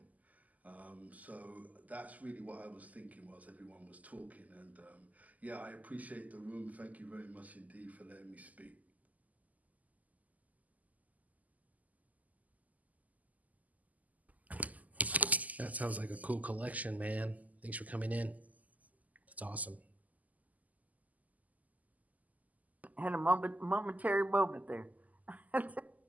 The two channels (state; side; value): late; left; 0.078 ms